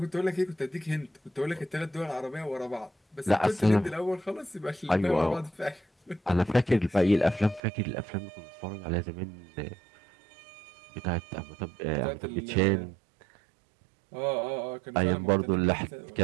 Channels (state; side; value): drops out; left; at 7.6 s